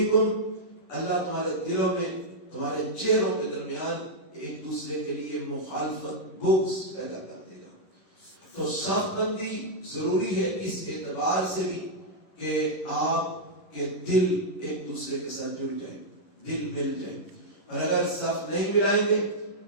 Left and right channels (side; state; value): right; late; 11 ms